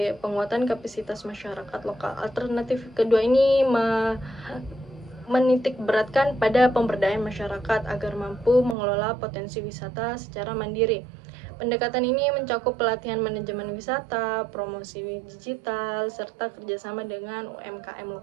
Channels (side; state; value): left; drops out; at 8.8 s